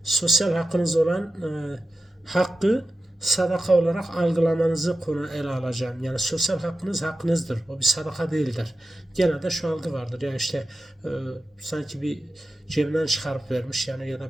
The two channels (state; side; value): normal; both; correlation 0.92